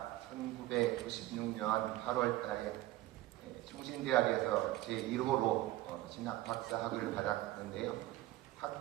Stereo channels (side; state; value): left; quieter; 16.5 dB